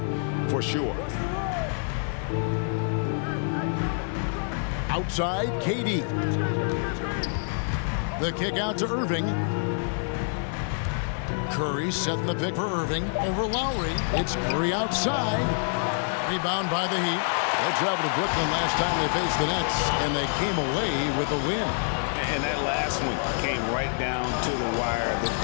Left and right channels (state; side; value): silent; right; 58 dB below the other